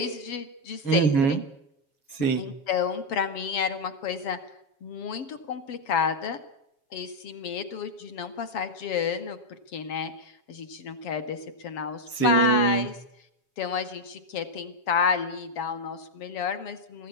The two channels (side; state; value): right; late; 7.2 ms